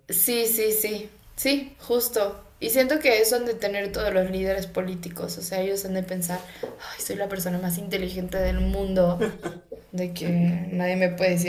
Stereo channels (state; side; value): identical; both; correlation 1.00